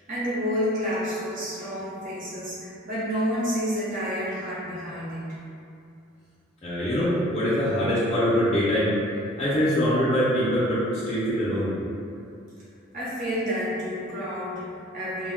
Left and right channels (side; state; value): both; normal; correlation 0.50